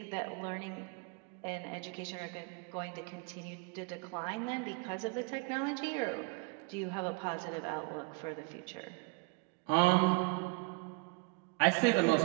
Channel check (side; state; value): left; quieter; 30.7 dB